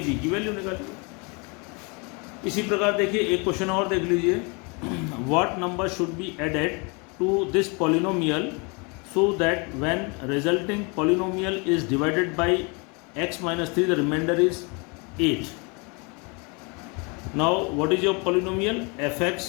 बी की वैल्यू निकालिए. इसी प्रकार देखिए एक क्वेश्चन और देख लीजिए. What number should be added to this polynomial so that when resulting polynomial is divided by x minus 3 the remainder is 8. Now what is your polynomial? fx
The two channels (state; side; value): quieter; right; 31.3 dB